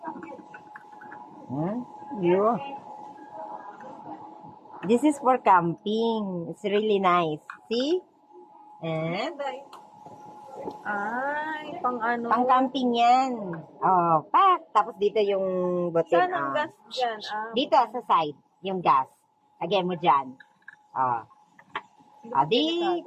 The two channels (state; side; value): identical; both; correlation 1.00